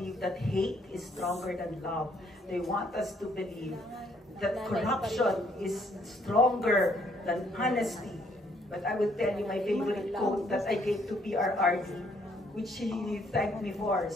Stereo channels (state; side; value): normal; both; correlation 0.67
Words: that hate is stronger than love. They want us to believe that corruption is stronger than honesty. But I will tell you my favorite quote that I gave to PRRD, which he thanked me for.